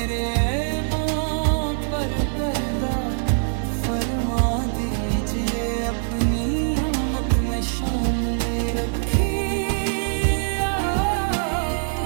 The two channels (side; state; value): left; silent; 60 dB below the other